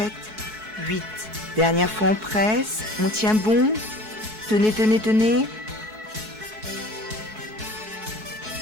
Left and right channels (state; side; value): late; left; 4.6 ms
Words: 8. Dernière fois on presse, on tient bon. Tenez, tenez, tenez.